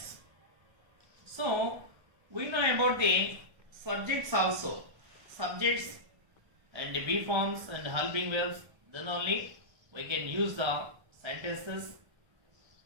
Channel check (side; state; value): left; late; 1.3 ms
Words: So we know about the subjects also. Subjects and the be forms and helping verbs. Then only we can use the sentences.